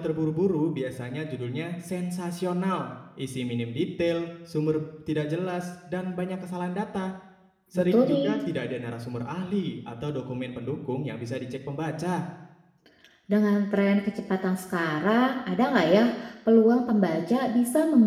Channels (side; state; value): both; identical; correlation 1.00